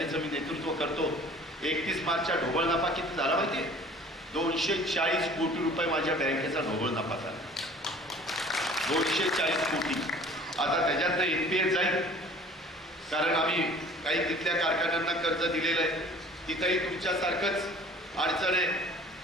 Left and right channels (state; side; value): normal; both; correlation 0.48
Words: मी नेतृत्व करतो, 31 मार्चच्या ढोबळ नफा किती झाला माहिती? 240 कोटी रुपये माझ्या बँकेचा ढोबळ नफा झाला. 240 कोटी. आता त्याच्यातनं NPA जाईल, कारण आम्ही काही तिथल्या कारखान्यांना कर्ज दिलेलं आहे. तिथंही तुमच्यासारखंच अडचण आहे.